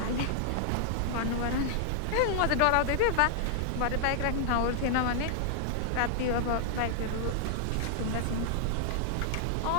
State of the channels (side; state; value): both; different; correlation -0.01